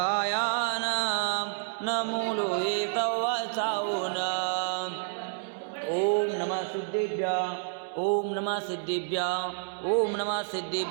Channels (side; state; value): left; silent; digital silence